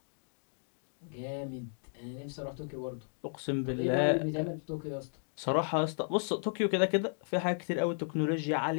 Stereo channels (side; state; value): right; silent; digital silence